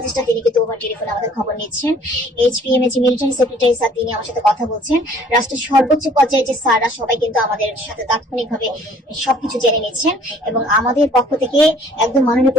তিনি কিন্তু ওভার টেলিফোনে আমাদের খবর নিচ্ছেন। HPM এর যে মিলিটারি সেক্রেটারি স্যার, তিনি আমার সাথে কথা বলছেন। রাষ্ট্রের সর্বোচ্চ পর্যায়ে যে স্যাররা সবাই কিন্তু আমাদের সাথে তাৎক্ষণিকভাবে সবকিছু জেনে নিচ্ছেন। এবং আমাদের পক্ষ থেকে একদম মাননীয়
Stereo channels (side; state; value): both; normal; correlation 0.56